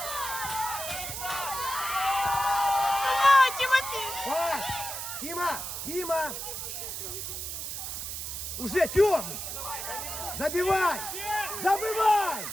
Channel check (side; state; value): right; noise; hiss, 6 dB below the sound